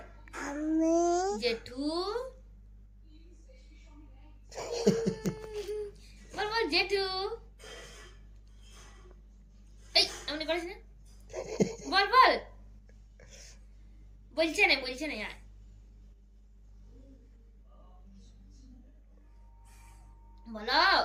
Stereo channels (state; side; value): identical; both; correlation 1.00